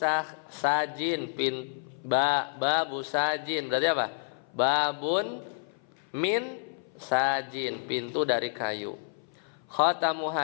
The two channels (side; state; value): right; silent; 56 dB below the other